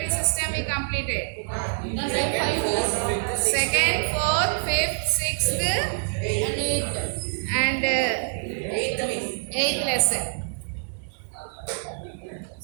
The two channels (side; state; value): left; silent; digital silence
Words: system we completed. Second, fourth, fifth, sixth and eighth lesson.